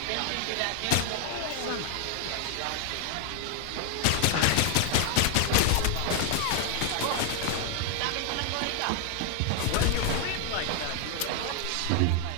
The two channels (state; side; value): different; both; correlation 0.00